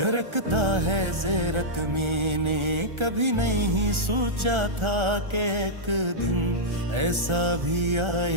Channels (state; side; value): late; left; 1.4 ms